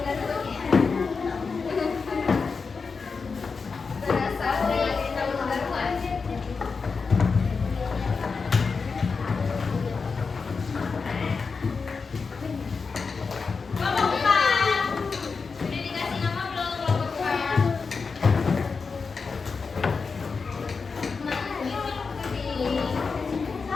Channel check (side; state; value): right; quieter; 4.9 dB